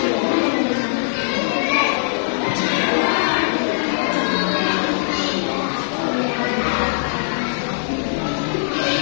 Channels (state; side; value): silent; right; 57 dB below the other